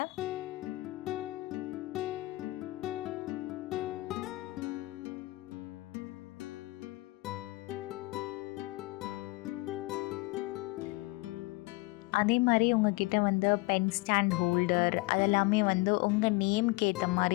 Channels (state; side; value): quieter; right; 22.3 dB